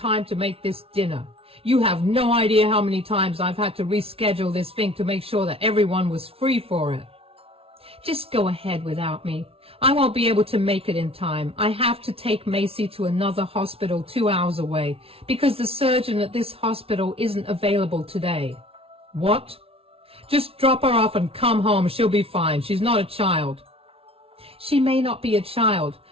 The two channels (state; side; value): late; left; 0.27 ms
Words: to make this dinner. You have no idea how many times I've had to reschedule this thing to make sure that everyone was free for it." "Just go ahead without me. I won't be able to make it in time. I have to take Macy to another hospital 2 hours away because the surgeon at this hospital isn't available today." "What?" "Just drop her off and come home. She'll be fine. She's not a child." "She may not be a child,